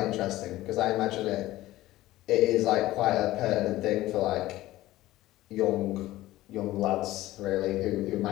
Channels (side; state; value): right; quieter; 16.4 dB